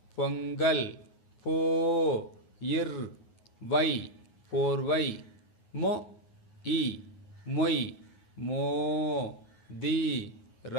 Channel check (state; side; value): late; right; 9.5 ms